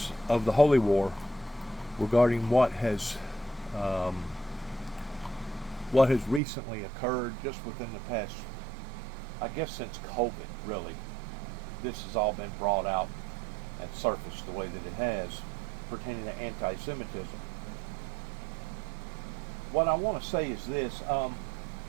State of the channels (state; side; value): drops out; left; at 6.4 s